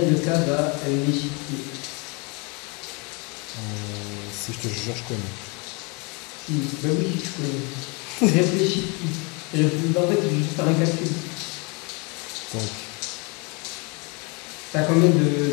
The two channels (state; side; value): quieter; right; 30.8 dB